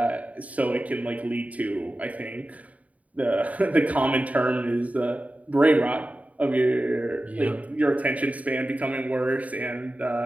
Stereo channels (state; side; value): late; left; 0.070 ms